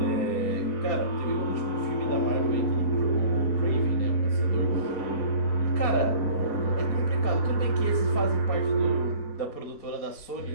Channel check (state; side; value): late; right; 4.2 ms